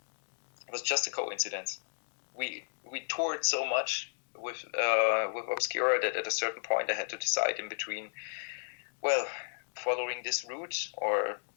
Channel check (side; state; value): right; silent; digital silence